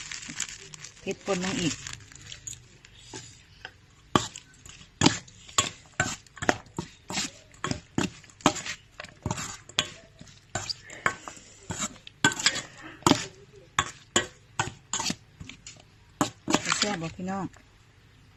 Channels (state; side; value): identical; both; correlation 1.00